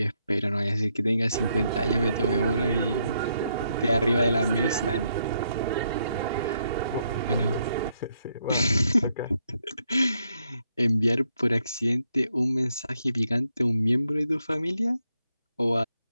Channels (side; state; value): both; inverted; correlation -0.77